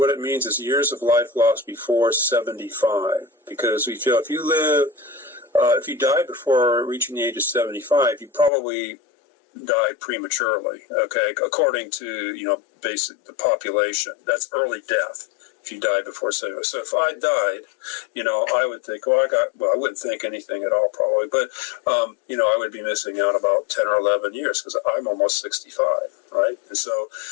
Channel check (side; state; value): right; drops out; at 8.5 s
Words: it means is years of life lost before 75. Because we feel if you die before reaching the age of 75, you probably died prematurely, okay, according to, you know, the population. That's early death if you die before 75. So if I died, you know, I would think, I wouldn't think anything at all probably, but, you know, I would be missing out about 10 or 11 years because I'm almost 65, right? And so